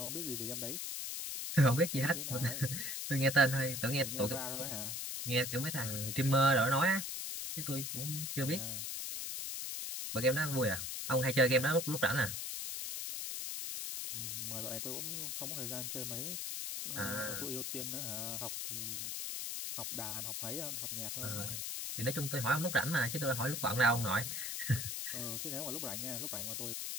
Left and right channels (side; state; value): left; noise; hiss, 3 dB below the sound